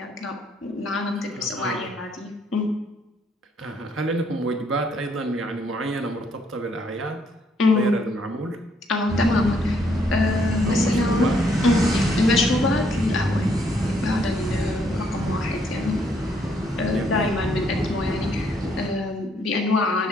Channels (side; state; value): both; normal; correlation 0.70